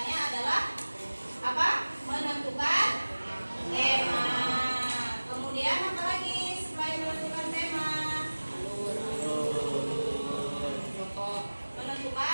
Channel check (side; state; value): both; inverted; correlation -1.00